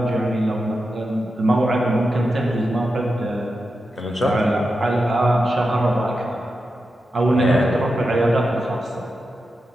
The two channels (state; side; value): normal; both; correlation 0.89